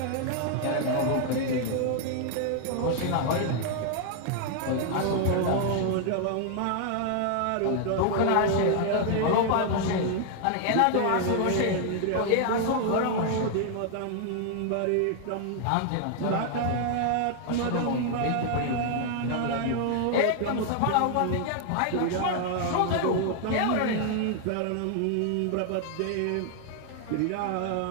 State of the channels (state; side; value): different; both; correlation 0.00